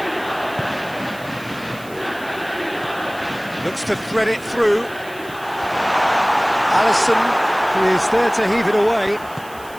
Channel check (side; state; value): right; noise; hiss, 21 dB below the sound